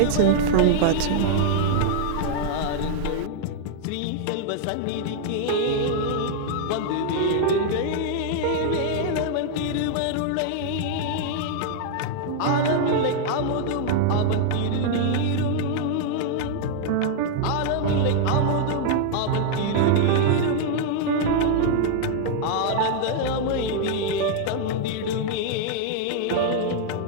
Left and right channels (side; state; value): both; different; correlation -0.01